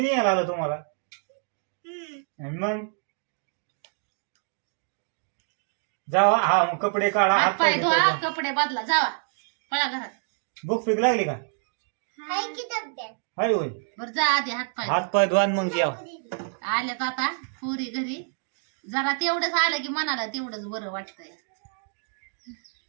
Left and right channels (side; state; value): left; silent; 60 dB below the other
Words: नाही आलो तुम्हाला. आणि मग जावा हा मग कपडे काढा हात पाय धुवा धुवा. कपडे बदला जावा पळा घरात भूक पीक लागली का हाय की डब्यात हाय होय बर जा आधी हात पाय हात पाय धुवा आणि मग जेवा. आल्यात आता पुरी घरी जरा तेवढंच आलं की मनाला तेवढंच बरं वाटतंय